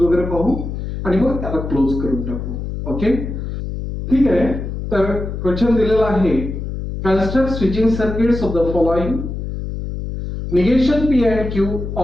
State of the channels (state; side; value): noise; left; hum, 6 dB below the sound